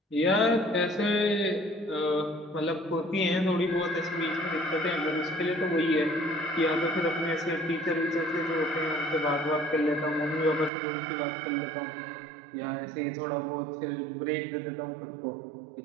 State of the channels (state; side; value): drops out; left; at 10.7 s